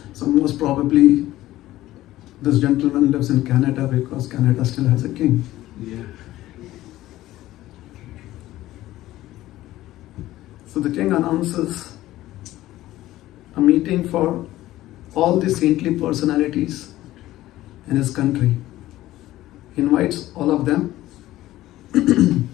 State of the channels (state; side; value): quieter; right; 15.5 dB